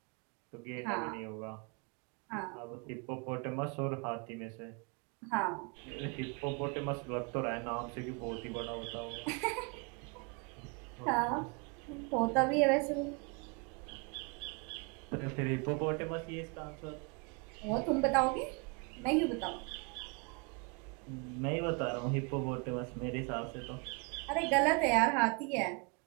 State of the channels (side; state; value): left; quieter; 32.3 dB